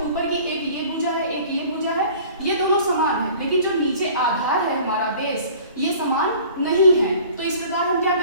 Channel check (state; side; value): inverted; both; correlation -0.47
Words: ऊपर की एक ये भुजा है एक ये भुजा है, ये दोनों समान है, लेकिन जो नीचे आधार है हमारा बेस ये समान नहीं है। तो इस प्रकार हम क्या